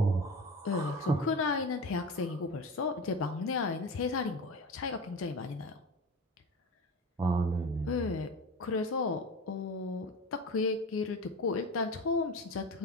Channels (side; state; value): both; normal; correlation 0.30